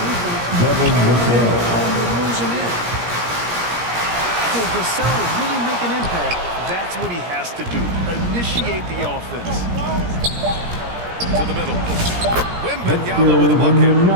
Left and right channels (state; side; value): late; left; 17 ms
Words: defense, Devin Vassell. you're losing in. If Vassell is really make an impact, that's what he has to do. Initiate the offense. To the middle. Wembanyama with a bucket.